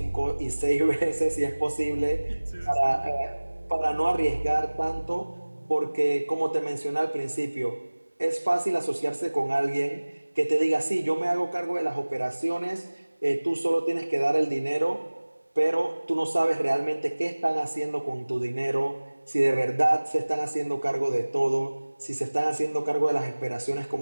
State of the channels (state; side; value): inverted; both; correlation -1.00